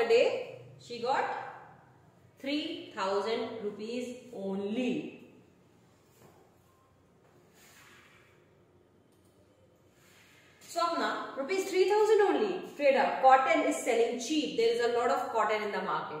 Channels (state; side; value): identical; both; correlation 1.00